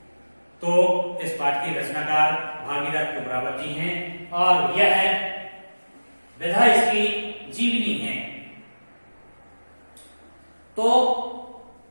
तो इस पाठ के रचनाकार भागीरथ कुमरावत जी हैं और यह विधा इसकी जीवनी है। तो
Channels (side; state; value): both; inverted; correlation -1.00